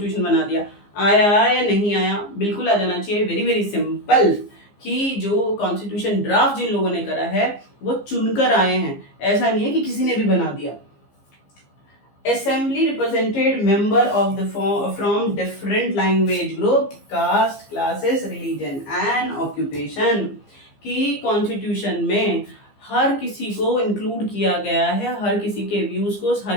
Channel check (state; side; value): late; right; 15 ms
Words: बना दिया। आया या नहीं आया, बिल्कुल आ जाना चाहिए। वेरी वेरी सिंपल कि जो कॉन्स्टिट्यूशन ड्राफ्ट जिन लोगों ने करा है वो चुनकर आए हैं, ऐसा नहीं है कि किसी ने भी बना दिया। Assembly represented member of the from different language group, caste, classes, religion and occupation। की कॉन्स्टिट्यूशन में हर किसी को इंक्लूड किया गया है, हर किसी के व्यूज को,